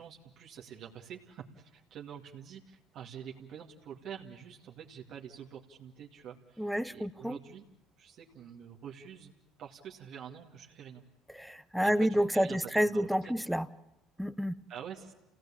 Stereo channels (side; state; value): both; normal; correlation 0.96